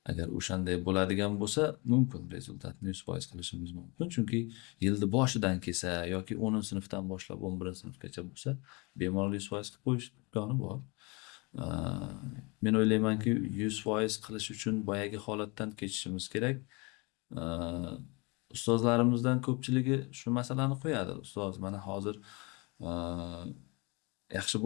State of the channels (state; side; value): quieter; right; 28.1 dB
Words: Agar o'shanday bo'ladigan bo'lsa, mumkin rezultatni 100% qilishimiz mumkin. Chunki yilni boshidan kelsa yoki 10-sinfdan boshlab 11-sinfgacha bo'lsa, bemalol 100% qilib qo'yish imkoni bor. Men o'ylaymanki, 100% qilish uchun boyagi holatdan kechishimiz kerak. Ustozlarimizdan ko'pchiligi shu masalani qo'yadi. Ustoz, mana hozir yaxshi